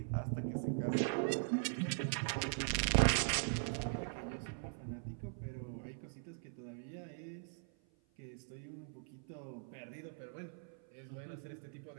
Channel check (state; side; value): silent; left; 50 dB below the other